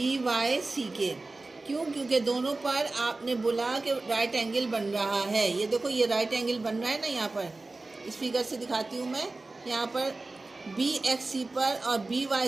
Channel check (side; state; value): left; quieter; 3.3 dB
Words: वाई सी के। क्यों? क्योंकि दोनों पर आपने बोला कि राइट एंगल बन रहा है। ये देखो, ये राइट एंगल बन रहा है ना, यहाँ पर इस फिगर से दिखाती हूँ मैं। यहाँ पर बी एक्स सी पर और बी वाई